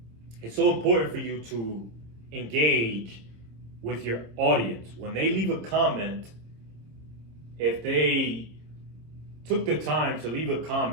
It's so important for you to engage with your audience. When they leave a comment, if they took the time to leave a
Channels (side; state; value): left; late; 26 ms